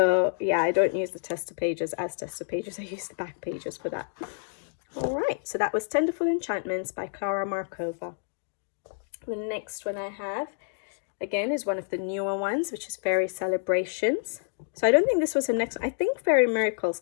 yeah, I don't use the tester pages as tester pages. I use the back pages for that. All right, so that was Tenderful Enchantments by Klara Markova. The next one I have, again, is one of the newer ones, which is Fairy Celebrations. So I don't think this was the next one. I think Fairy Miracles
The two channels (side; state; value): right; silent; 59 dB below the other